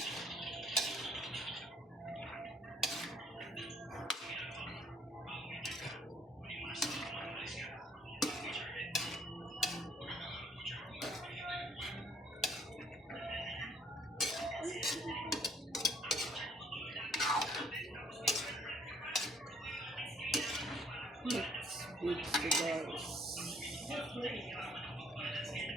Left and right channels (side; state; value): both; normal; correlation 0.63